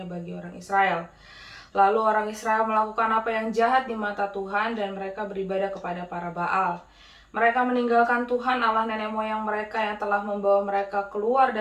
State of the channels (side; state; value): both; identical; correlation 1.00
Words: bagi orang Israel. Lalu orang Israel melakukan apa yang jahat di mata Tuhan dan mereka beribadah kepada para Baal. Mereka meninggalkan Tuhan Allah nenek moyang mereka yang telah membawa mereka keluar